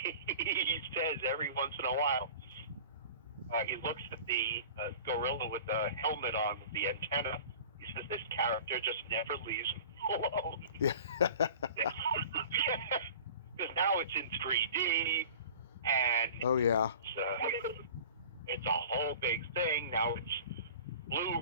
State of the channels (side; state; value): both; inverted; correlation -0.41